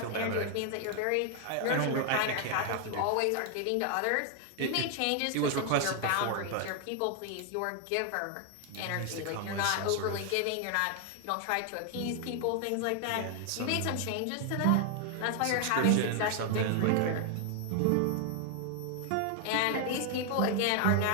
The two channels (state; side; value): different; both; correlation 0.00